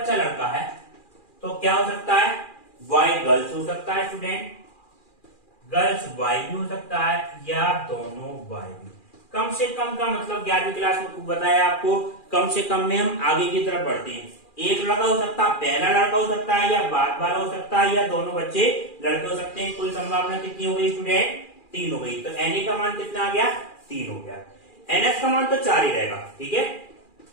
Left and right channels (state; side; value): late; right; 2.4 ms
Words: लड़का है तो क्या हो सकता है, बॉय गर्ल्स हो सकता है स्टूडेंट, गर्ल्स बॉय भी हो सकता है या दोनों बॉय भी। कम से कम का मतलब 11वीं क्लास में बताया आपको, कम से कम में हम आगे की तरफ बढ़ते हैं। एक लड़का हो सकता है, पहला लड़का हो सकता है या बाद वाला हो सकता है या दोनों बच्चे लड़के हो सकते हैं। कुल संभावना कितनी हो गई स्टूडेंट, 3 हो गई। तो NA का मान कितना आ गया, 3 हो गया। NS का मान तो 4 ही रहेगा। ठीक है,